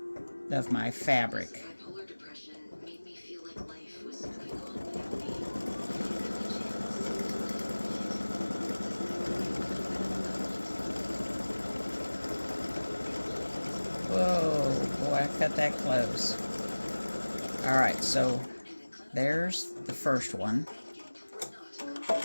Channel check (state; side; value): inverted; both; correlation -1.00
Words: of my fabric. Whoa, boy, I cut that close. Alright, so there's the first one.